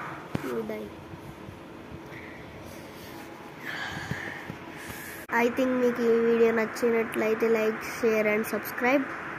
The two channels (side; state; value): both; identical; correlation 1.00